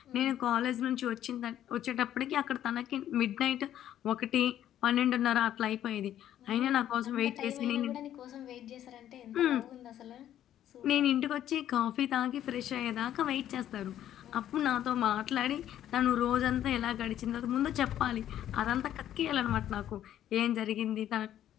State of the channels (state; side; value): quieter; right; 11.4 dB